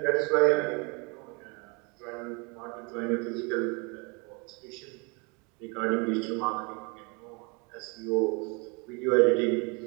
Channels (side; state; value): left; quieter; 31.0 dB